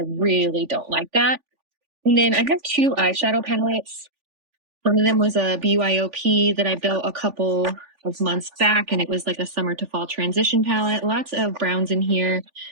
really don't like that. And then I have two eyeshadow palettes. One of them was a BYOP that I built a couple of months back, and it was like a summer to fall transition palette. Lots of browns in here,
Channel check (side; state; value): left; late; 3.4 ms